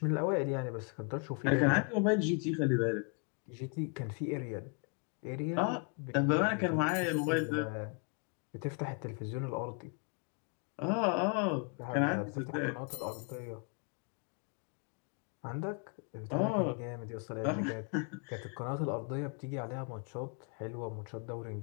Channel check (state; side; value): quieter; right; 39.1 dB